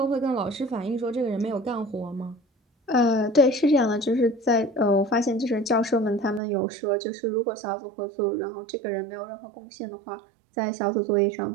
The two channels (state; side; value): drops out; left; at 6.4 s